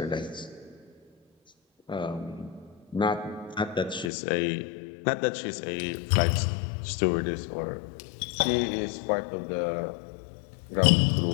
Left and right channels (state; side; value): drops out; right; at 4.1 s